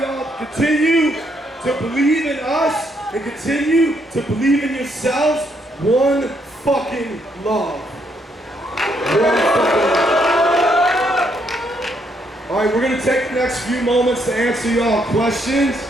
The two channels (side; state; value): both; normal; correlation 0.74